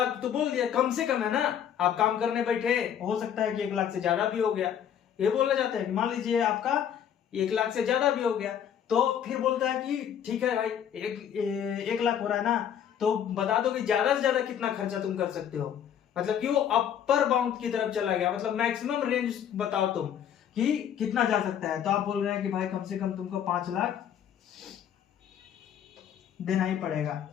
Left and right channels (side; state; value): right; quieter; 9.2 dB